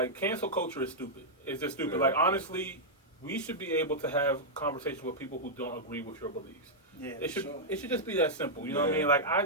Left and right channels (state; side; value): normal; both; correlation -0.07